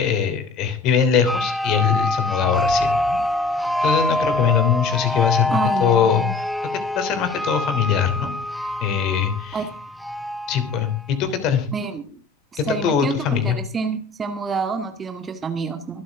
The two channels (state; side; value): quieter; right; 4.3 dB